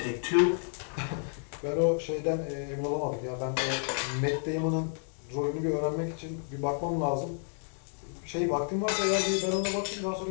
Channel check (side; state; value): right; silent; 57 dB below the other